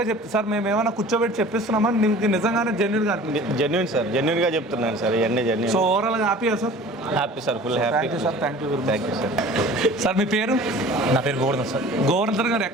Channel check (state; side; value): normal; both; correlation 0.44